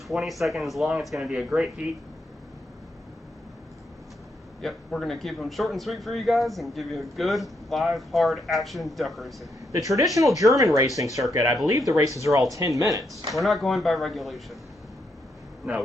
20 seconds long. It's going to be a great heat. Yep, we're going to keep them short and sweet for you guys and give you a good, live, hard action duck racing. The traditional German racing circuit, I believe the races are all 10 minutes. We're not going by regulation. No,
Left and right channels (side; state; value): both; normal; correlation 0.79